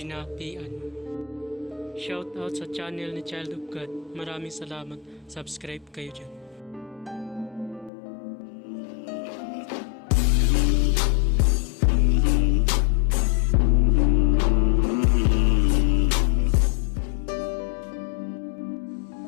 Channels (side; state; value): right; drops out; at 7.9 s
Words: Shout out sa channel ni Child of God. Maraming salamat. Subscribe kayo dyan.